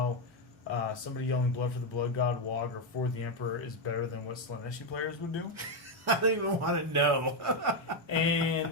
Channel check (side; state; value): both; normal; correlation 0.05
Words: somebody yelling "Blood for the Blood God," Wog, or "For the Emperor" is better than what Slaneshi players would do. I don't even want to know.